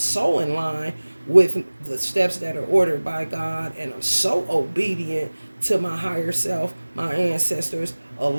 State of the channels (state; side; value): inverted; both; correlation -1.00